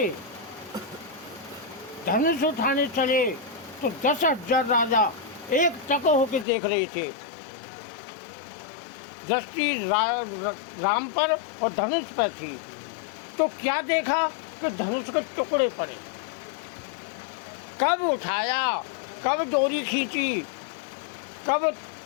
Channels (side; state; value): right; drops out; at 6.5 s